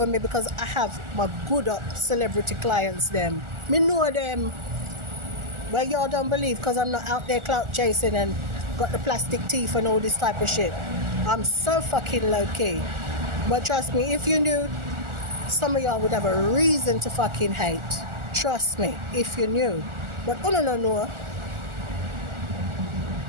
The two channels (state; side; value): late; left; 1.4 ms